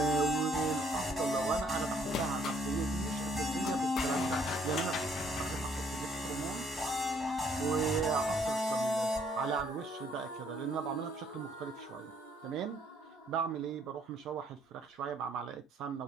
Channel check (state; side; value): normal; both; correlation 0.65